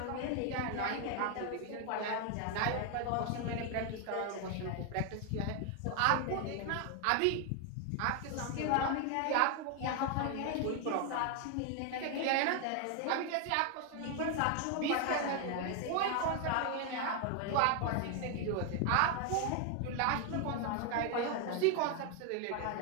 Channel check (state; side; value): different; both; correlation 0.01